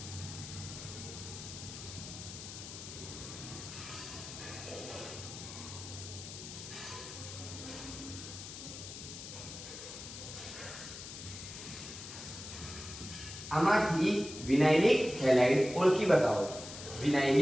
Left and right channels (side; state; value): left; noise; hiss, 11 dB below the sound